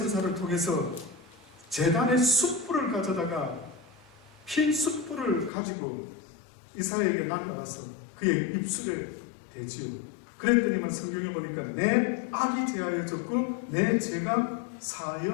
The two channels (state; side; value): drops out; right; at 5.5 s